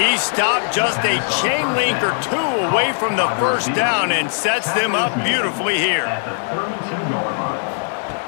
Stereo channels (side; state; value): right; silent; 64 dB below the other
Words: stopped just a chain link or two away from the first down and sets them up beautifully here.